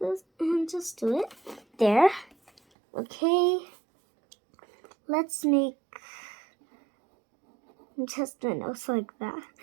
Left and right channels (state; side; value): drops out; left; at 2.6 s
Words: this and just do it there. Okay, let's make just a nose like that.